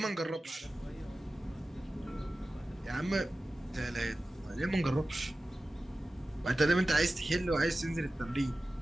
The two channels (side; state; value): both; normal; correlation 0.95